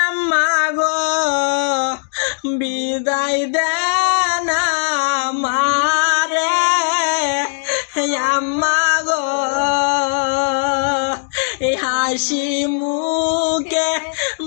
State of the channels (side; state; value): right; silent; digital silence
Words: আম্মা গো, বিদায় দেন আমারে আম্মা গো। এই হাসি মুখে